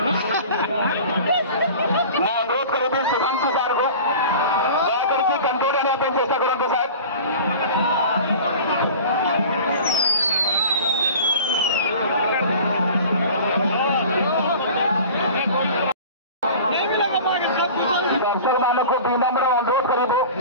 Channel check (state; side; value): inverted; both; correlation -0.39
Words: मैं अनुरोध करूंगी शुभांशु सार को दया करके कंट्रोल आने पर चेष्टा करूंगा साहब। दर्शक मानक को विनम्र अनुरोध करूँ